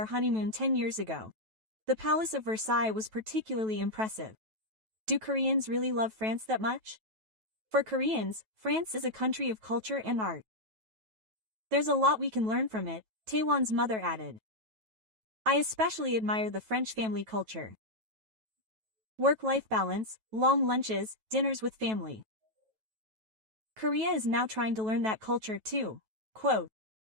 honeymoon 10 years ago. The Palace of Versailles was particularly impressive. Do Koreans really love France that much? For Koreans, France is a country of culture and art. There's a lot we can learn from it, Taewon's mother added. I especially admire the French family culture. Work-life balance, long lunches, dinners with family. Korea is now trying to learn that culture too. Quote.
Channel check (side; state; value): left; late; 9.2 ms